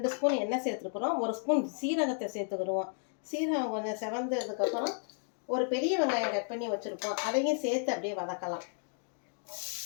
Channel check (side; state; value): right; silent; 56 dB below the other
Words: ஸ்பூன் எண்ணெய் சேர்த்துருக்குறோம். 1 ஸ்பூன் சீரகத்தை சேர்த்துக்கிடுவோம். சீரகம் கொஞ்சம் செவந்ததுக்கப்புறம் ஒரு பெரிய வெங்காயம் கட் பண்ணி வச்சுருப்போம். அதையும் சேர்த்து அப்படியே வதக்கலாம்.